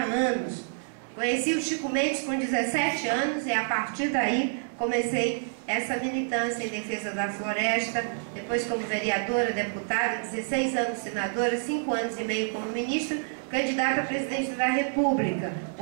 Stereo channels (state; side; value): silent; left; 59 dB below the other